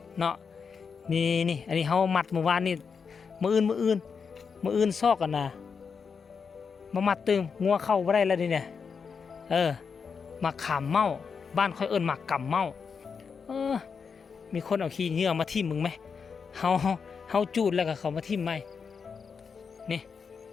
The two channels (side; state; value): right; quieter; 5.8 dB